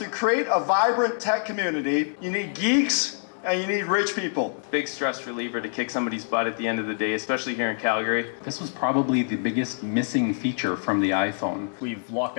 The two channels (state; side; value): silent; right; digital silence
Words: create a vibrant tech community, you need geeks and you need rich people. Big stress reliever to kick somebody's butt at the end of the day, especially here in Calgary. This was probably the biggest missing feature from the iPhone. We've locked